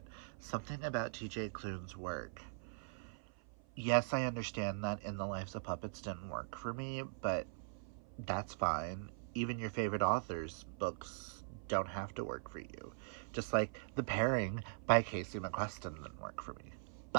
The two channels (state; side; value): silent; left; 50 dB below the other